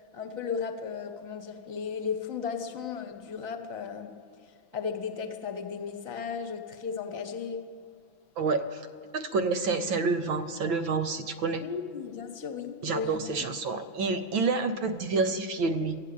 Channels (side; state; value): left; late; 6.0 ms